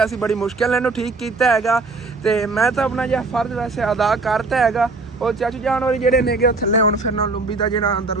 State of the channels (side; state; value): left; quieter; 3.7 dB